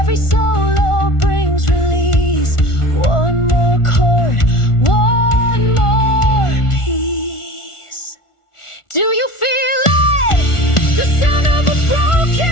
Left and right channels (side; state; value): right; late; 1.4 ms